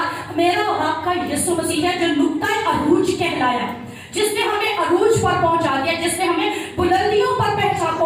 मेरा और आपका यीशु मसीह है, जो नुक्ता अरूज कहलाया, जिसने हमें अरूज पर पहुंचा दिया, जिसने हमें बुलंदियों पर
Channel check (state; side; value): identical; both; correlation 1.00